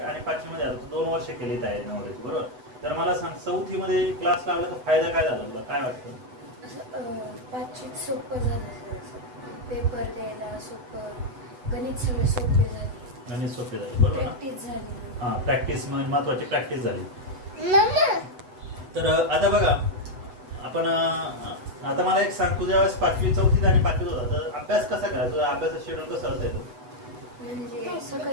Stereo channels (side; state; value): left; late; 8.0 ms